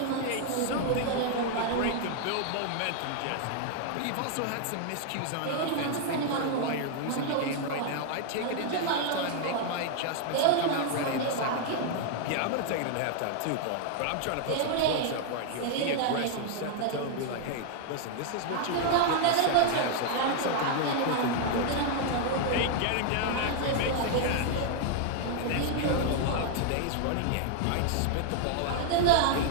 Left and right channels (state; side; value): different; both; correlation 0.00